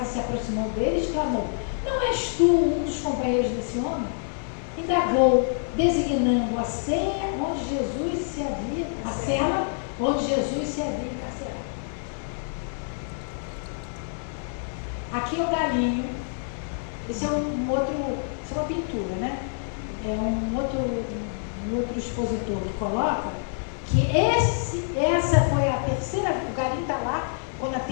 se aproximou dele e exclamou: não és tu um dos companheiros desse homem? Indagou, designando a cela onde Jesus se havia encarcerado. Aqui é o galinho. Esse é isso é uma pintura, né? É um outro expositor que coloca que essa foi a terceira, o galinho está lá, quando a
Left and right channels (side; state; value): right; silent; 61 dB below the other